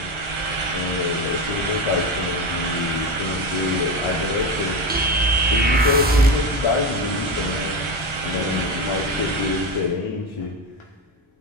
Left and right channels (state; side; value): normal; both; correlation 0.17